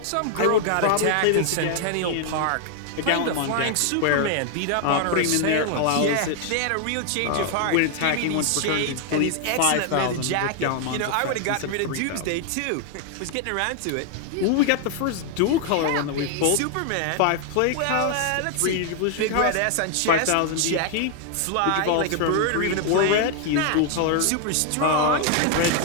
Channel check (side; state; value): both; different; correlation 0.00